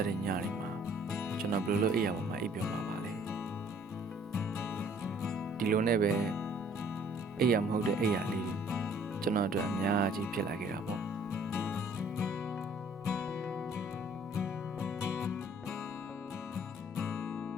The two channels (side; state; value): both; normal; correlation 0.58